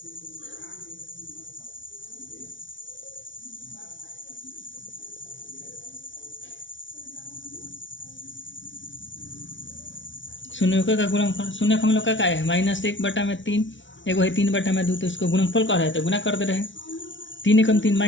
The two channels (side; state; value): right; late; 0.55 ms